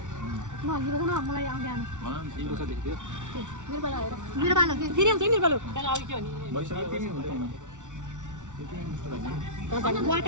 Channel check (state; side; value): late; left; 0.86 ms